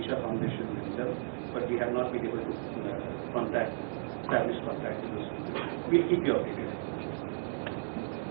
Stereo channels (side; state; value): left; silent; digital silence